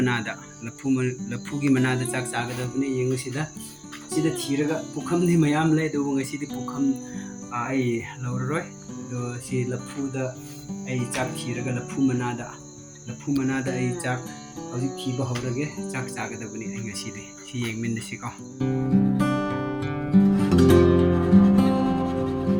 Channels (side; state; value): both; identical; correlation 1.00